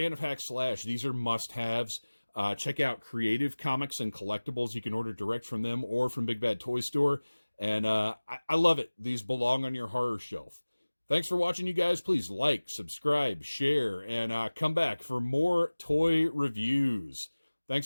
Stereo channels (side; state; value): both; inverted; correlation -1.00